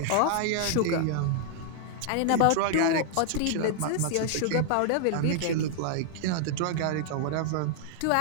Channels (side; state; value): both; different; correlation -0.01